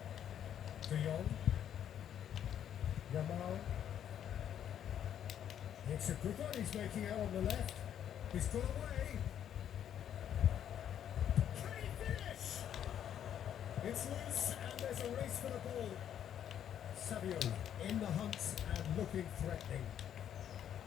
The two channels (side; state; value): right; quieter; 9.8 dB